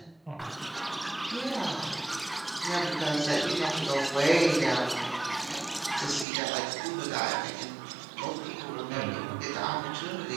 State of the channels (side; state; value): left; drops out; at 6.2 s